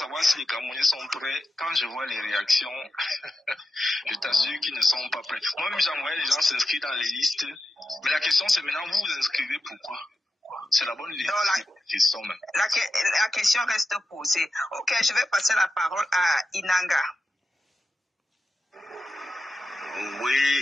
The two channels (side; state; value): both; normal; correlation 0.91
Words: si les Camerounais sont prêts. Quand je vois les réactions, je t'assure qu'ils ne sont pas prêts. Moi-même, j'envoyais les gens s'inscrire dans les listes. Mais la question, c'est maintenant, vous vous inscrivez pourquoi? C'est la bonne idée. La question reste posée. Ok, je vais passer la parole à Inanga.